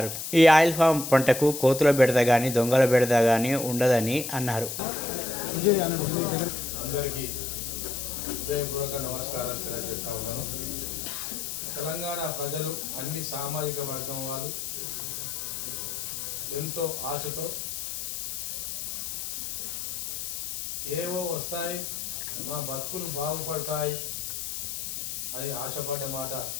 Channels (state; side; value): noise; left; hiss, 5 dB below the sound